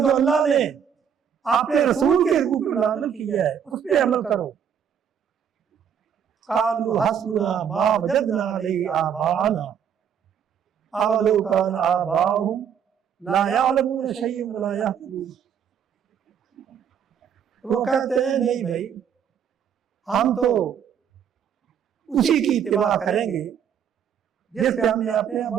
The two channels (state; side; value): quieter; left; 8.1 dB